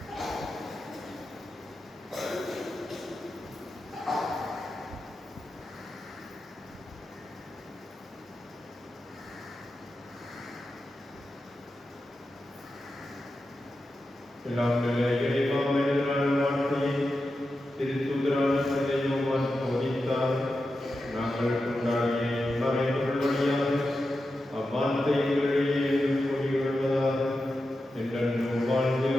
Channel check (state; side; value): normal; both; correlation 0.90